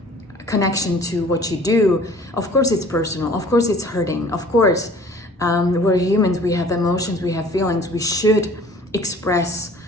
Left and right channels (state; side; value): normal; both; correlation 0.50